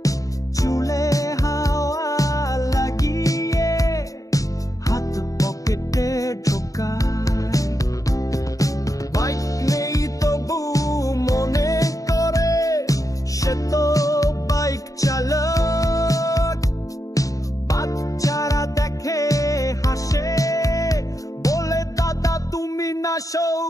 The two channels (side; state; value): right; late; 0.16 ms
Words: চুলে হাওয়া লাগিয়ে হাত পকেটে ঢোকায়। বাইক নেই তবু মনে করে সে তো বাইক চালক, বাচ্চারা দেখে হাসে, বলে দাদা তুমি না